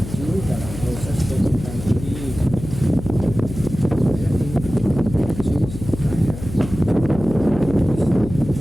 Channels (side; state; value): left; noise; hum, 11 dB below the sound